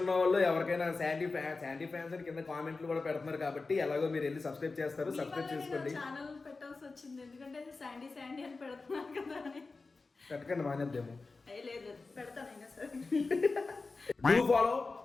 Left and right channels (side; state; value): right; quieter; 3.9 dB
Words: వాళ్ళు ఎవరికైనా శాండీ ఫ్యాన్స్ అని కింద కామెంట్లు కూడా పెడుతున్నారు కాబట్టి ఎలాగో మీరు వెళ్ళి సబ్స్క్రైబ్ చేస్తారు, సబ్స్క్రైబ్ చేసుకోండి. ఛానల్ పెట్టాల్సి వచ్చింది ఎందుకంటే శాండీ అని పెడుతున్నారు కదా అని. పెట్టకండి, మానేద్దాము. లేదు, పెడతానైనా సరే. డూ ఫాలో